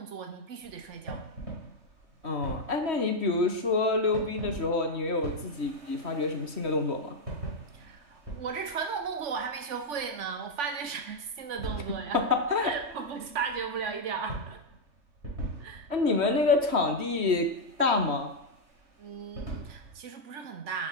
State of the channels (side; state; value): left; late; 3.5 ms